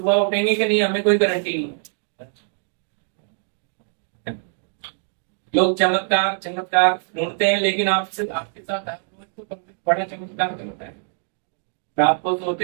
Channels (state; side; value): silent; left; 60 dB below the other